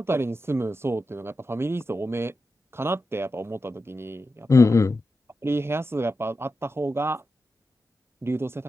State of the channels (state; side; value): normal; both; correlation 0.90